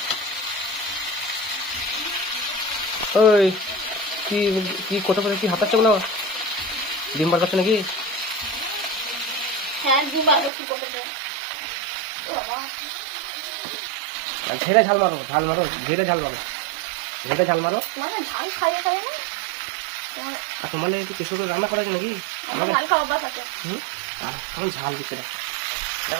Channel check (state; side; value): drops out; left; at 10.5 s